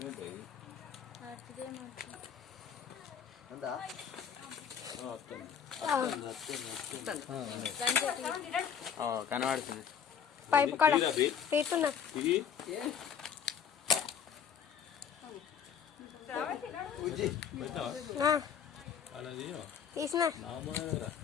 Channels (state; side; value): quieter; right; 7.7 dB